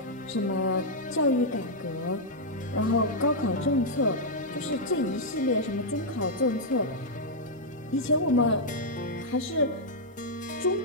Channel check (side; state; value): both; normal; correlation -0.05